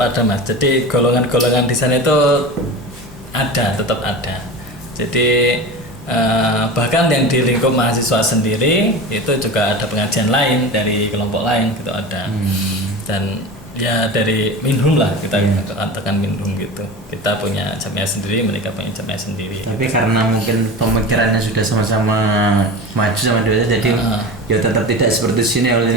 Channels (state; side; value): normal; both; correlation 0.30